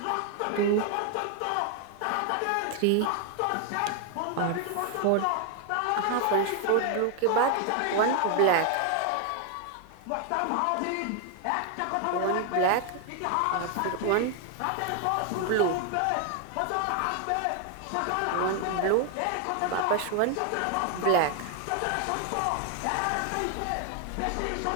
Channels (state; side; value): different; both; correlation 0.01